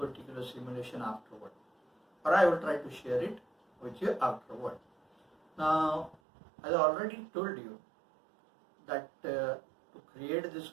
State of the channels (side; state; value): left; drops out; at 6.2 s